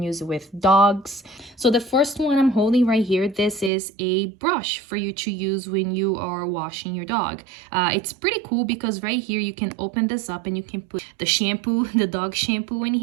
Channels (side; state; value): left; drops out; at 3.7 s